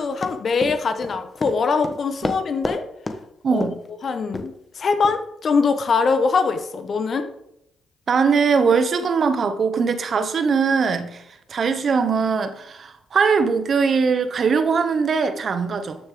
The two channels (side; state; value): both; normal; correlation 0.78